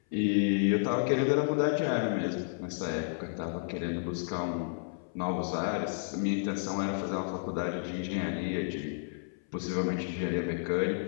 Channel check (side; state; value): right; silent; 57 dB below the other